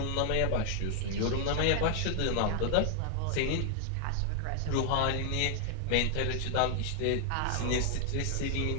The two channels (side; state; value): both; different; correlation 0.00